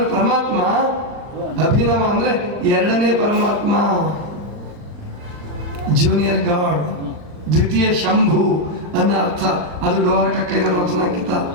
ಪರಮಾತ್ಮ, ಅಭಿನವ ಅಂದ್ರೆ 2ನೇ ಪರಮಾತ್ಮ, ಜೂನಿಯರ್ ಗಾಡ್, ದ್ವಿತೀಯ ಶಂಭು ಅನ್ನೋ ಅರ್ಥ. ಅದು ಡೋಹರ ಕಕ್ಕಯ್ಯನವರ ವಚನಾಂಕಿತ.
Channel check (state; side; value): late; left; 39 ms